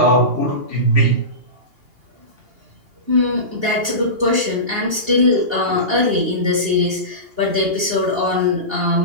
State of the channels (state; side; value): late; left; 2.8 ms